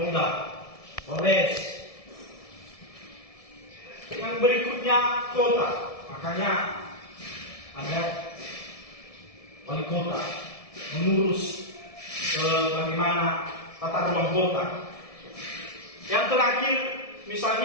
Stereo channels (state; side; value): late; right; 1.7 ms